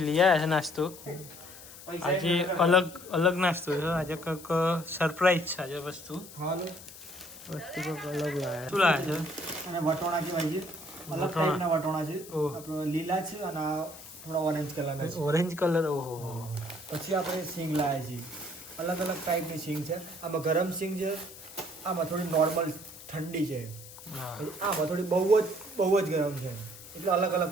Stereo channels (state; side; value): noise; left; hiss, 16 dB below the sound